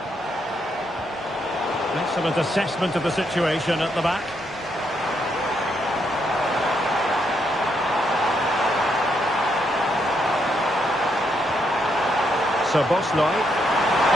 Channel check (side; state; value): both; normal; correlation 0.77